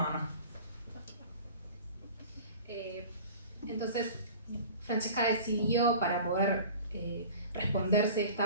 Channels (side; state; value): both; inverted; correlation -0.41